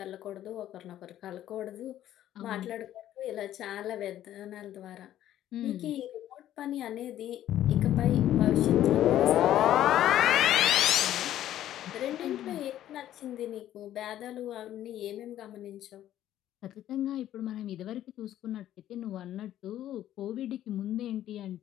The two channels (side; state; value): right; quieter; 12.3 dB